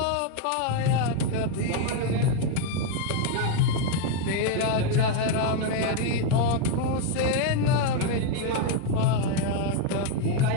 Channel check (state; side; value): different; both; correlation 0.01